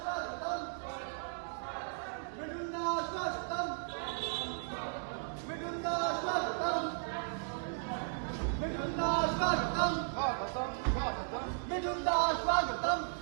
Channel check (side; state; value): left; silent; digital silence